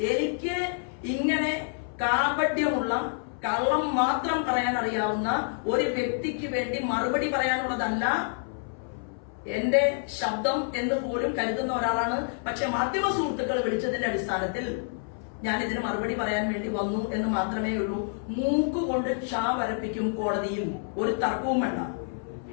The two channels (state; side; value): silent; right; 59 dB below the other